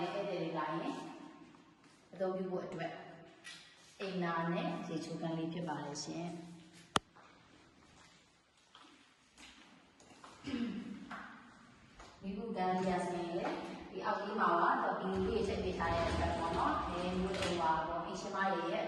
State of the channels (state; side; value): identical; both; correlation 1.00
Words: ဲ့ဧည့်သည်တွေလာရင်အသုံးပြုဖို့အတွက်အိမ်နာနဲ့ရေချိုးကန်လေးဖြစ်ပါလေရှင်။ဒီကုကန်ရစင်လေဒီအောက်ကြီးမှာတော့ဒီလေးချက်ပေးထားတဲ့အတွက်ပေါ့နော်။ဒီမျိုးတွေပါတော့အရှင်မရဲ့အ